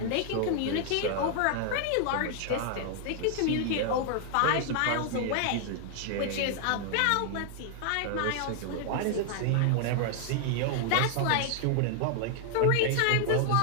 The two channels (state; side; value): different; both; correlation 0.00